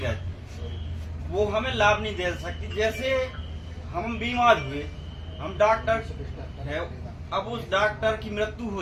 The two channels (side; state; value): both; identical; correlation 1.00